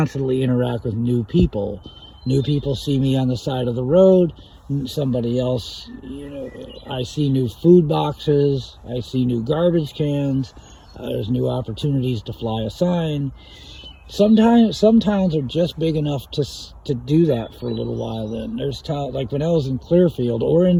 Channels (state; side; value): identical; both; correlation 1.00